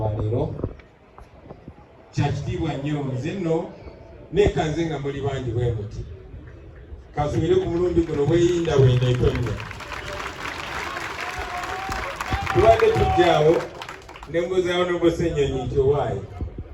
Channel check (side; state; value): both; identical; correlation 1.00